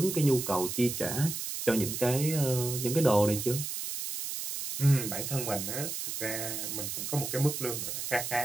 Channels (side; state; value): right; noise; hiss, 5 dB below the sound